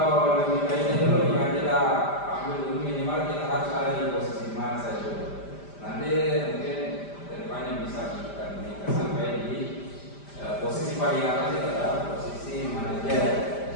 lebih baiknya dulu ya kita ambil dulu minimal kita harus ada di posisi mana saya dulu. Nanti mungkin kedepannya bisa kita sampai di posisi paling atas itu adalah posisi manajer.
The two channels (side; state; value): right; late; 5.0 ms